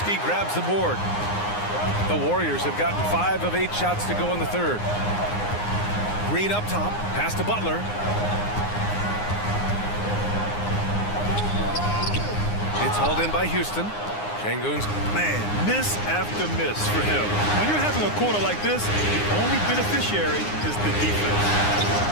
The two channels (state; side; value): late; right; 9.7 ms